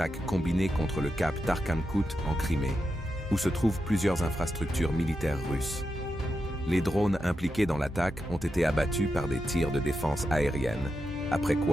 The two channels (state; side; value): normal; both; correlation 0.87